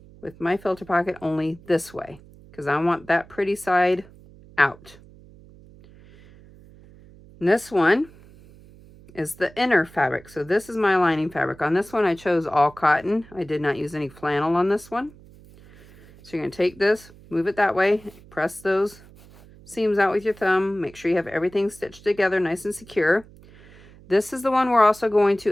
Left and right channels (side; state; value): right; noise; hum, 23 dB below the sound